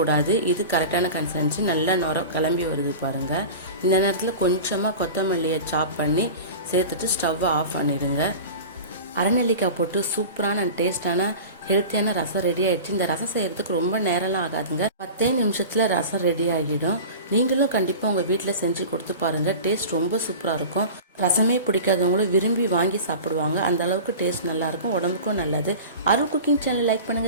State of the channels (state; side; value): inverted; both; correlation -0.34